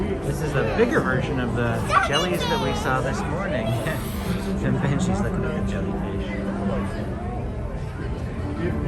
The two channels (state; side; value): identical; both; correlation 1.00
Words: This is the bigger version of the jellies that we saw this morning. And Benji's looking at the jellyfish. If